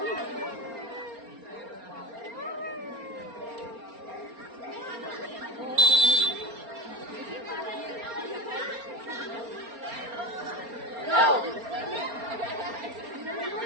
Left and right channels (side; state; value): left; late; 4.3 ms